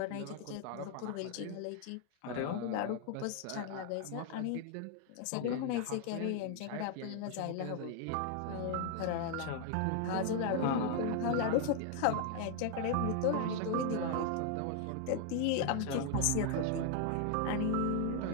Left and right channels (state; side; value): different; both; correlation 0.00